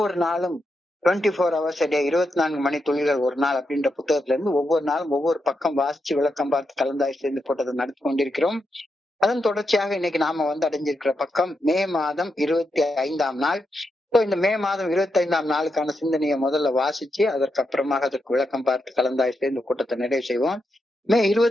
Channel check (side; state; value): both; normal; correlation 0.85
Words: நாளும் 24 hours a day 24 மணி துளிகள் ஒரு நாள் அப்படின்ற புத்தகத்துல இருந்து ஒவ்வொரு நாளும் ஒவ்வொரு பக்கம் வாசிச்சு விளக்கம் பார்த்து கலந்தாய்வு செய்து போட்டதை நடத்தி கொண்டிருக்கிறோம். அதன் தொடர்ச்சியாக இன்னைக்கு நாம வந்து அடைஞ்சிருக்கிற பக்கம் மே மாதம் 25ஆம் நாள். இந்த மே மாதம் 25ஆம் நாளுக்கான சிந்தனையை முதல்ல வாசிச்சு அதற்கப்புறமாக அதற்கு விளக்கம் பார்த்து கலந்தாய்வு செய்து இந்த கூட்டத்தை நிறைவு செய்வோம். மே